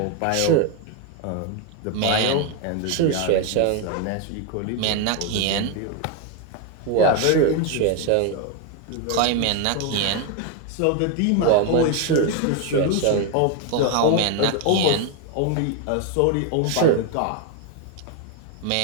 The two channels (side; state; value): both; different; correlation 0.01